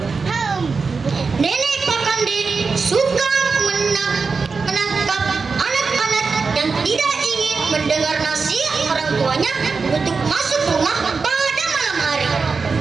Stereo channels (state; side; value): quieter; left; 4.7 dB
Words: Nenek Pakande suka menangkap anak-anak yang tidak ingin mendengar nasihat orang tuanya untuk masuk rumah pada malam hari.